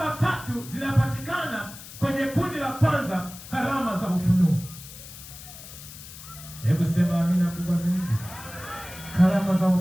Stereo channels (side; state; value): left; noise; hiss, 15 dB below the sound